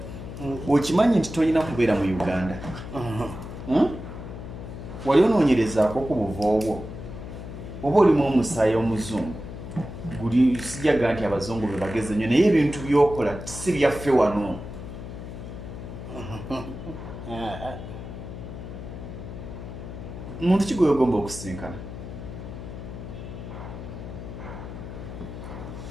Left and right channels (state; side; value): noise; left; hum, 10 dB below the sound